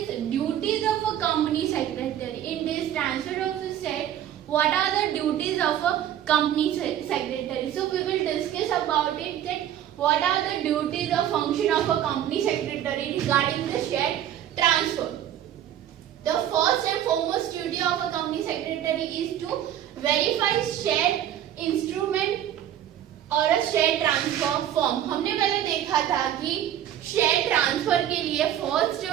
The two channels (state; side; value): quieter; left; 11.0 dB